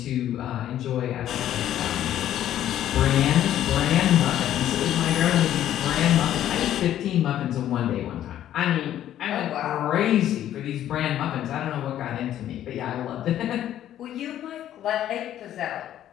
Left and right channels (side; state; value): right; quieter; 11.7 dB